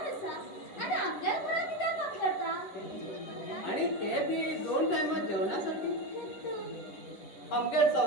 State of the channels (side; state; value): right; late; 10 ms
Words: असा आणि आपल्या घरात कित्याक काम करता. आणि ते बी 2 टायमात जेवणासाठी. आमगे